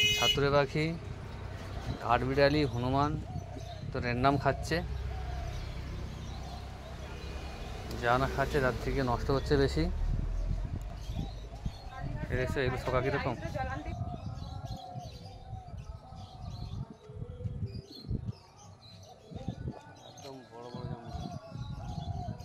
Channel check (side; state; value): both; identical; correlation 1.00